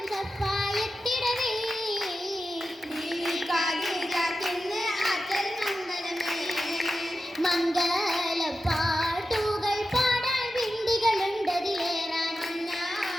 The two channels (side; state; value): both; normal; correlation 0.91